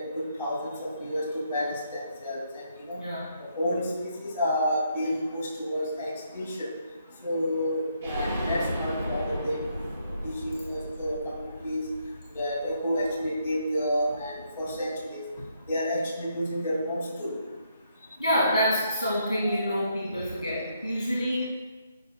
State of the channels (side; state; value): both; inverted; correlation -0.75